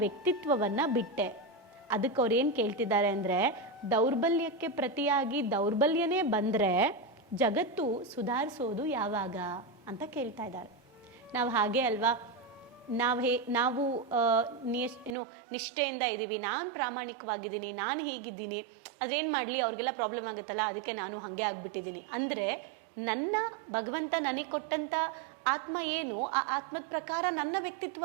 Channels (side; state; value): left; drops out; at 15.2 s